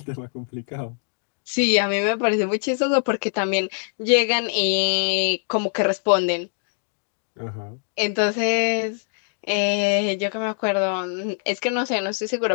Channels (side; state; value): right; silent; 63 dB below the other